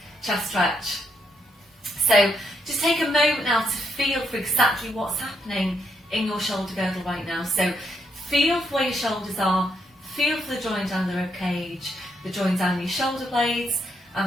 chest stretch. So just take a moment now to feel for exactly what's happening in your shoulder girdle right now. So feel for where your shoulders are, feel for the joint down the ribcage, the joint down your shoulder blades,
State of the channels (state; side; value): normal; both; correlation 0.77